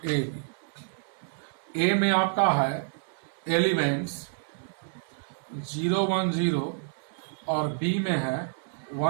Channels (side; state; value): left; silent; 59 dB below the other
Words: ए बी, ए में आपका है एलिमेंट्स 0 1 0 और बी में है